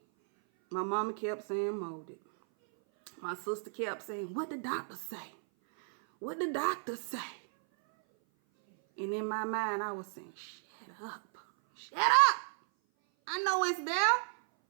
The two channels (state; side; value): silent; left; 55 dB below the other